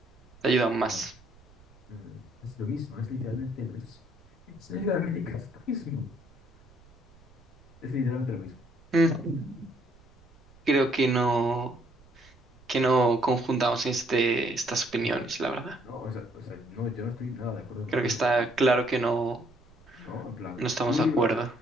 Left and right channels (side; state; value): right; noise; rumble, 27 dB below the sound